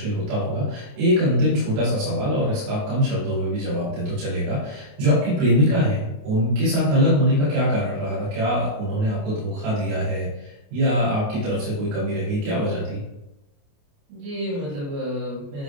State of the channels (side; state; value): left; late; 28 ms